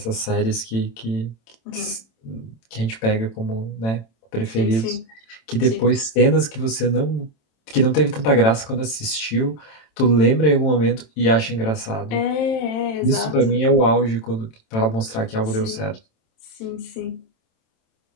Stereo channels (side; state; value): right; late; 27 ms